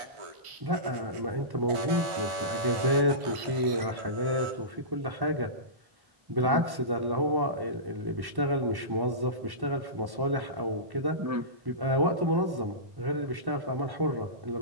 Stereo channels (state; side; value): late; left; 1.1 ms